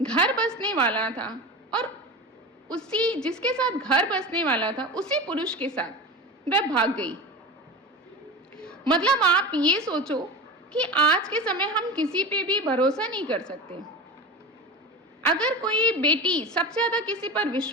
घर बसने वाला था और उसी जिसके साथ घर बसने वाला था उसी पुरुष के साथ वह भाग गई। मतलब आप ये सोचो कि आज के समय हम किसी पे भी भरोसा नहीं कर सकते। अगर कोई बेटी सबसे ज्यादा किसी पर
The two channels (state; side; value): normal; both; correlation 0.28